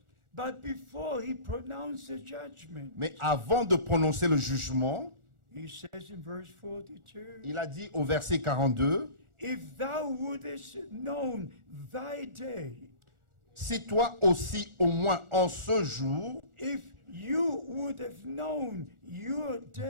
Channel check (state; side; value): late; left; 1.4 ms